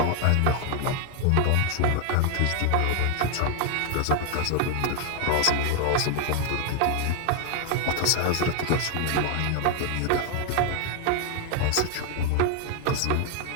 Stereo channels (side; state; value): both; different; correlation 0.00